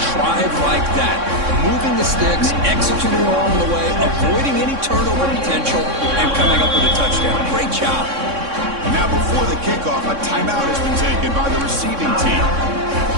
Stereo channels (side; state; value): left; late; 3.6 ms